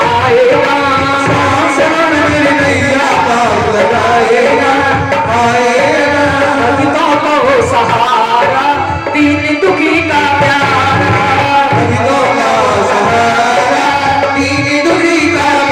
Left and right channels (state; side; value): identical; both; correlation 1.00